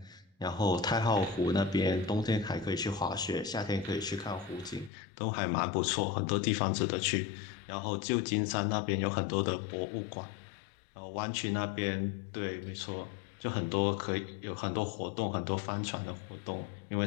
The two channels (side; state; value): right; drops out; at 4.9 s